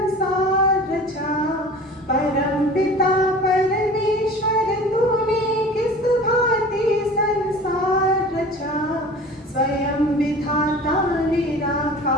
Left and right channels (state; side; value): normal; both; correlation 0.40